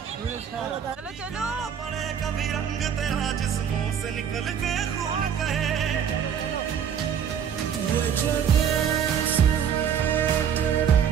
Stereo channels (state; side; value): quieter; left; 8.2 dB